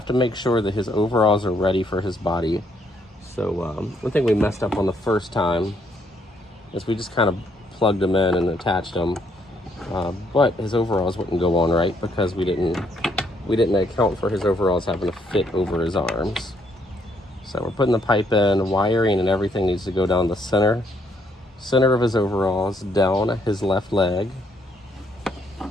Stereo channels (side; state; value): both; normal; correlation 0.71